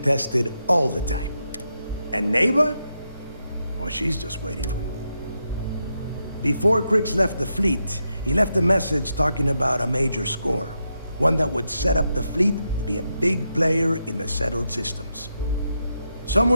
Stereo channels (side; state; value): both; inverted; correlation -0.84